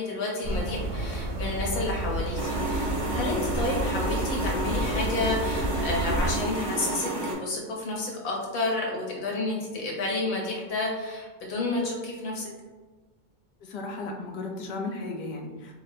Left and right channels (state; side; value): late; right; 2.2 ms